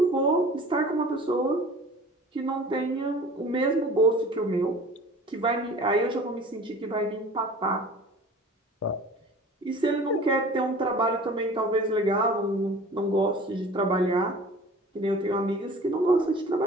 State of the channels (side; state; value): both; normal; correlation 0.43